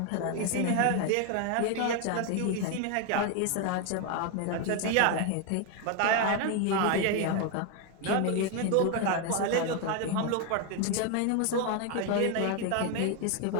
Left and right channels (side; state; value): both; different; correlation 0.01